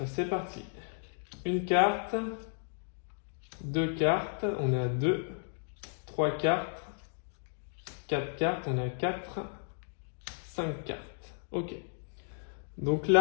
C'est parti. Une carte. 2 cartes. On est à 2. 3 cartes. 4 cartes. On est à 4. 5 cartes. Ok. Donc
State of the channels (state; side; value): silent; right; digital silence